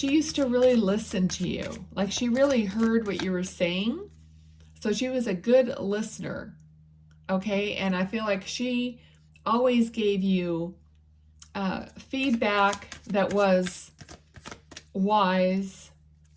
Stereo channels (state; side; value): identical; both; correlation 1.00